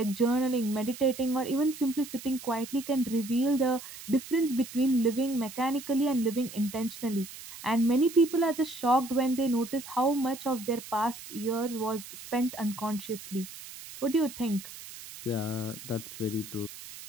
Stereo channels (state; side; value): noise; right; hiss, 14 dB below the sound